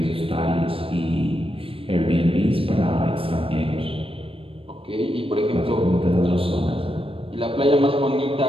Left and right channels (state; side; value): late; left; 0.27 ms